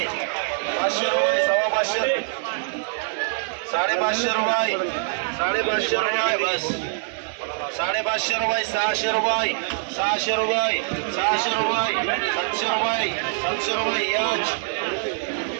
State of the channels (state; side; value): silent; left; 58 dB below the other